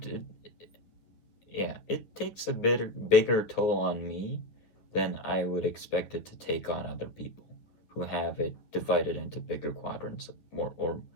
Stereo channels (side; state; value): right; late; 10 ms